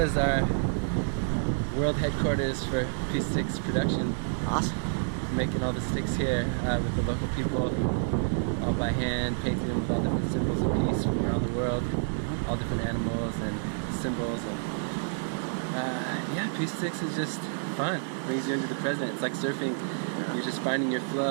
is our world headquarters for Peace Sticks production. Awesome. Making all the sticks here with the local people, all by hand, painting them with all different symbols of peace from around the world, all different animals and symbols. And yeah, Peace Sticks is just fun. It brings you into the present. It's like surfing. You're just finding your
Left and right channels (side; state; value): left; silent; digital silence